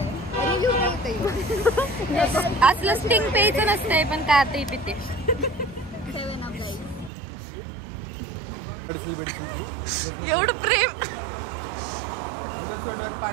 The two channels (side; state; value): left; drops out; at 7.1 s